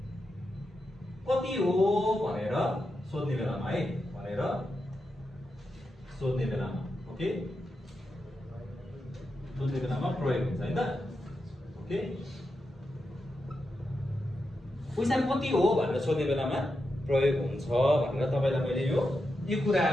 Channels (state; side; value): normal; both; correlation 0.87